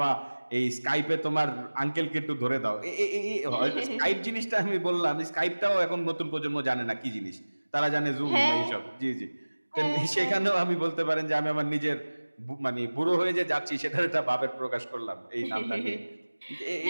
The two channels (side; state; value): both; inverted; correlation -1.00